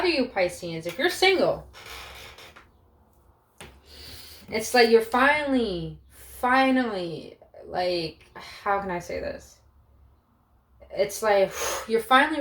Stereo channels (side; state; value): both; identical; correlation 1.00